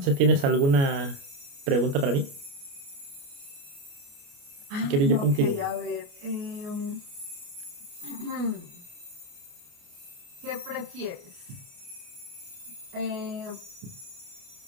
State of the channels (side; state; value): left; late; 29 ms